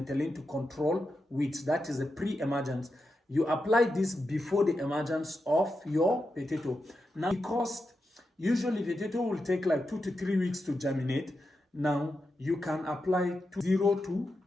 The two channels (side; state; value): both; normal; correlation 0.88